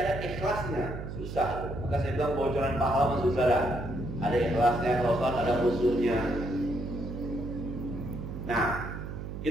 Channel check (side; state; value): right; noise; hum, 7 dB below the sound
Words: ikhlasnya, susah. Maka saya bilang bocoran pahala masuk saudara. Ada ikhlasnya, kalau ada musuhnya. Nah,